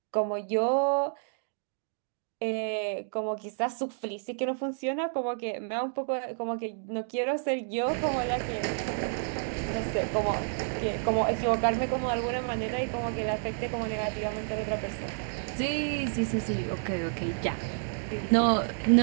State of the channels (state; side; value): silent; left; digital silence